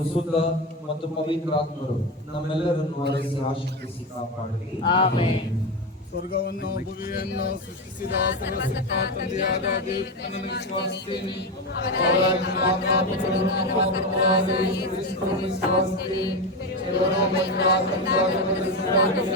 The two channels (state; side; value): normal; both; correlation 0.14